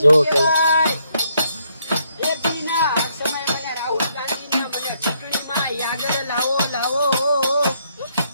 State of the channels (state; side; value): inverted; both; correlation -0.73